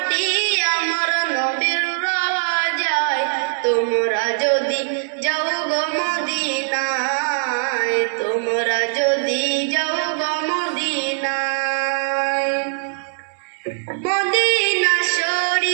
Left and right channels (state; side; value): silent; left; 65 dB below the other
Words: আমার নবীর রওজায়, তোমরা যদি যাও গো মদিনায়, তোমরা যদি যাও গো মদিনায়, মদিনা